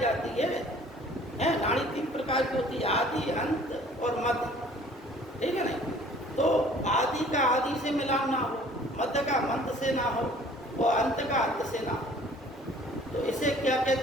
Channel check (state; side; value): normal; both; correlation 0.53